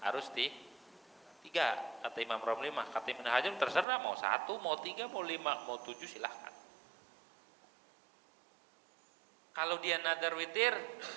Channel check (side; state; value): left; drops out; at 3.9 s